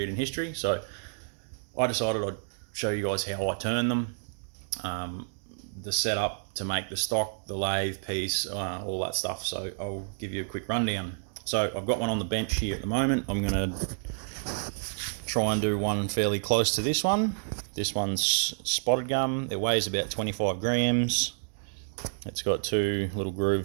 in history. So I decided I'd show you guys how I turn them, the setup to make the stock, the lathe piece, all that stuff. So I'll give you a quick rundown. So I've got one on the bench here at the moment. I'm going to try and do one fairly close to this one. This one's spotted gum. It weighs about 25 grams. It's got two little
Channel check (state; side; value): silent; left; digital silence